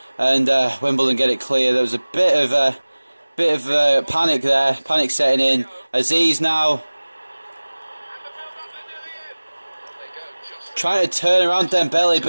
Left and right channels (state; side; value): inverted; both; correlation -1.00